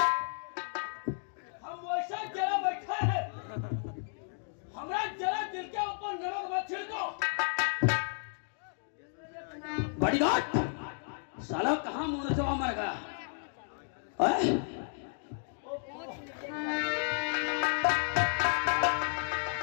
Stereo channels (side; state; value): right; silent; 56 dB below the other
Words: हम वैसा जरा बैठे हैं, हमरा जरा दिल के ऊपर नमक मत छिड़को। बॉडीगार्ड, साला कहाँ मुंह से मर गया?